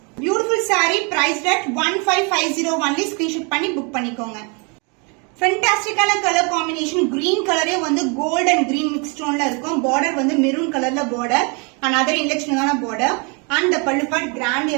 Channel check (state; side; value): quieter; left; 33.0 dB